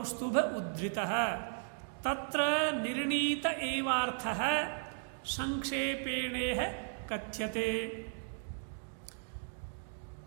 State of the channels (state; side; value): silent; left; digital silence